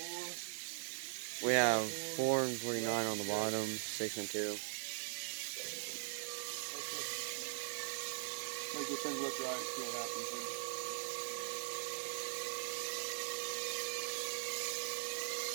We have 4 and 49 on the bottom, 6 and 2. Make this thing look right and see what happens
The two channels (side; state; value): left; silent; digital silence